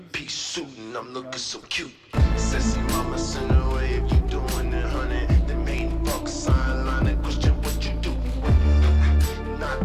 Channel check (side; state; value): both; identical; correlation 1.00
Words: suit and I'm looking so cute. Sissy mama send away if you doing it, honey. The main fuck sign line and question what you do.